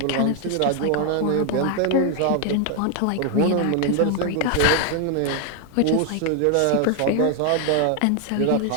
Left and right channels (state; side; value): different; both; correlation 0.00